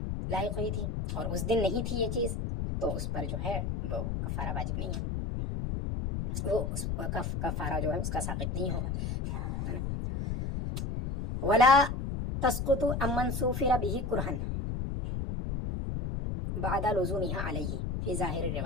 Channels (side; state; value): left; noise; rumble, 2 dB below the sound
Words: لاحق ہوئی تھی اور اس دن نہیں تھی یہ چیز تو اس پر جو ہے وہ کفارہ واجب نہیں ہے، وہ اس کفارہ جو ہے اس کا ساقط نہیں ہوگا۔ ولا تسقط عمن سوفر به کرہن بعد لزومها علیہ فی ظاہر